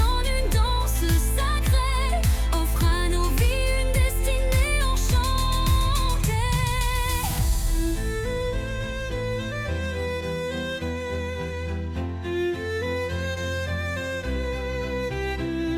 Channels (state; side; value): identical; both; correlation 1.00